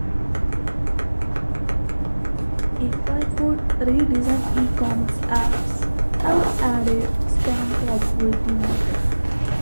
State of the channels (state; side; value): inverted; both; correlation -1.00